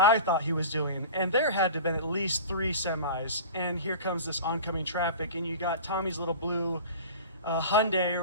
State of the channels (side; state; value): both; inverted; correlation -0.36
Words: thought he was doing. And there had to have been at least 3 semis. And here comes this oncoming traffic, and you got Tommy's little blue Hyundai